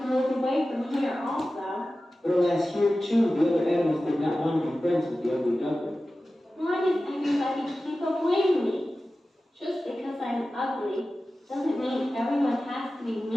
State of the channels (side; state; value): both; normal; correlation 0.95